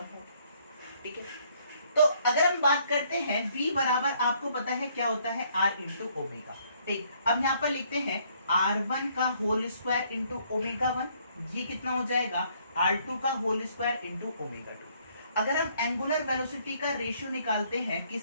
होगी, ठीक है। तो अगर हम बात करते हैं v बराबर आपको पता है क्या होता है, r इंटू ओमेगा, ठीक। अब यहाँ पर लिखते हैं r1 का होल स्क्वायर इंटू ओमेगा 1, ये कितना हो जाएगा, r2 का होल स्क्वायर इंटू ओमेगा 2। अगर हम एंगुलर वेलोसिटी का रेशियो निकालते हैं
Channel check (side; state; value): both; inverted; correlation -0.66